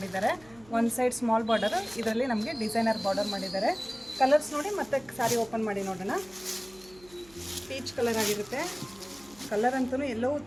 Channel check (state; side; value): noise; right; hum, 25 dB below the sound